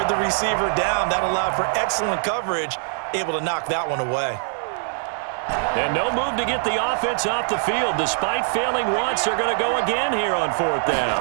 the receiver down. That allowed for excellent coverage, able to knock that one away. And no move to get the offense off the field. Despite failing once, they're going to go again here on 4th down.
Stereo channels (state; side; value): silent; left; 61 dB below the other